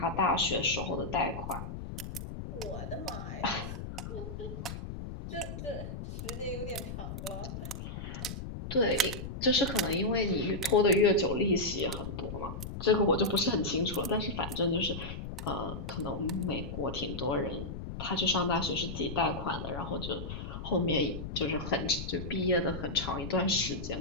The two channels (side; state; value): left; noise; rumble, 7 dB below the sound